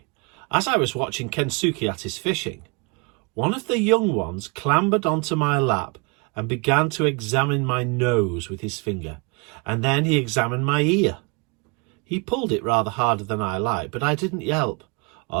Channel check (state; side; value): quieter; left; 30.7 dB